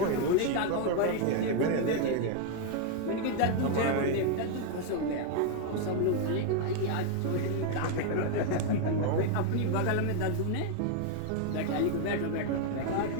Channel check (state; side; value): different; both; correlation 0.00